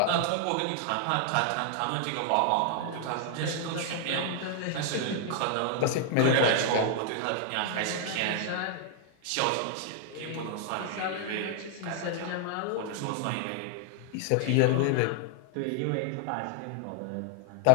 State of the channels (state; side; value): different; both; correlation 0.00